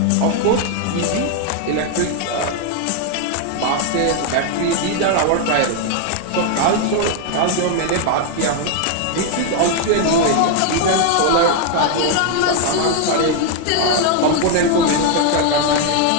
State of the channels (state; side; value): different; both; correlation 0.01